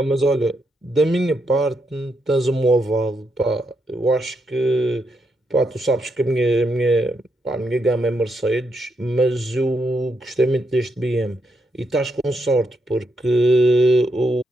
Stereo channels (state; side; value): normal; both; correlation 0.80